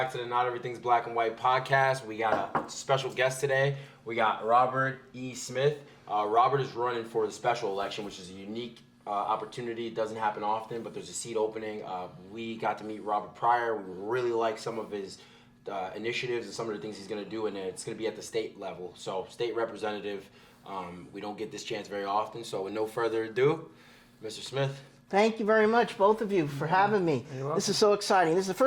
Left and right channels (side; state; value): both; identical; correlation 1.00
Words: to the Not Everything's Black and White podcast. We got a special guest today. We got Robert E. Smith. Robert is running for the special election, which is a unique opportunity. It doesn't happen often, but there's a seat opening. We got to meet Robert prior. We really like some of his initiatives and some of the things he's going to do, and it's going to be at the state level. So, state representative. We don't get this chance very often. So, with no further ado, Mr. Smith. Thank you very much, both of you, for having me. This is so exciting. This is the